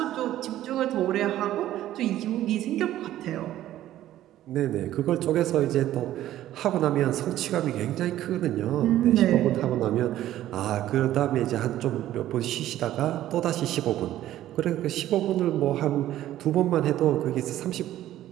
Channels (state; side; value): quieter; left; 13.3 dB